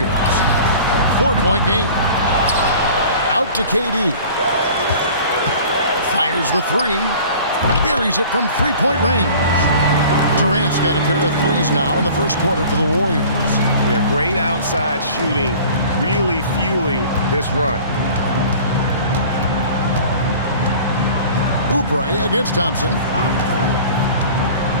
4-point game. Out to KD. Fires the three. Buries it from three-point range. Durant's got a pair of threes now in the first quarter for the Warriors. Yeah, great outside shooting, really fueling this run. Oubre against Thompson.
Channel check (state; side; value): inverted; both; correlation -0.44